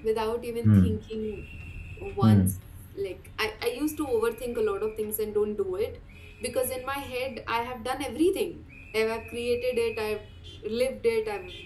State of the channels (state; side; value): identical; both; correlation 1.00